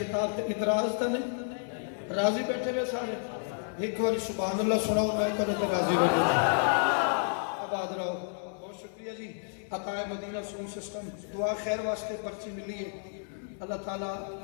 تے اعتراض تا نہیں راضی بیٹھے ہوئے سارے ایک باری سبحان اللہ سناؤ میں کرے تے راضی بیٹھے آباد رہو. بہت شکریہ جی. عطائے مدینہ سون سسٹم دعا خیر واسطے پرچی ملی ہے. اللہ تعالیٰ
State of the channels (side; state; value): right; silent; 57 dB below the other